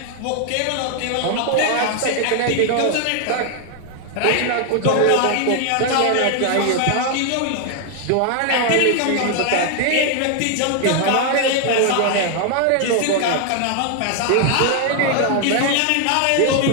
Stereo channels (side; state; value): both; different; correlation 0.00